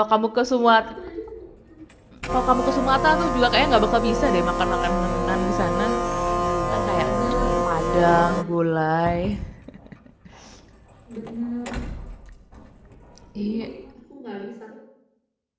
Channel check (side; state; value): both; identical; correlation 1.00